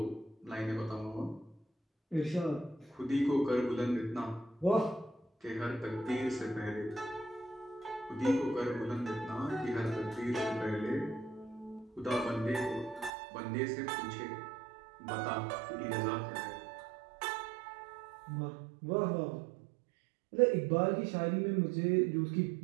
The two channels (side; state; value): left; drops out; at 13.1 s